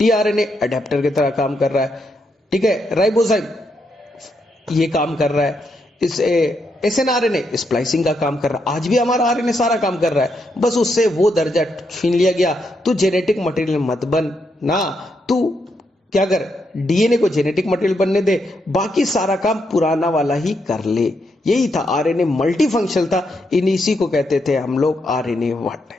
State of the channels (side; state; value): both; normal; correlation 0.80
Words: अडेप्टर की तरह काम कर रहा है, ठीक है, राइबोजाइम ये काम कर रहा है, इस एसएनआरएनए स्प्लाइसिंग का काम कर रहा है। आज भी हमारा आरएनए सारा काम कर रहा है, बस उससे वो दर्जा छीन लिया गया। तू जेनेटिक मटेरियल मत बन ना, तू क्या कर, डीएनए को जेनेटिक मटेरियल बनने दे, बाकी सारा काम पुराना वाला ही कर ले। यही था, आरएनए मल्टी फंक्शनल था, इसी को कहते थे हम लोग आरएनए वर्ड।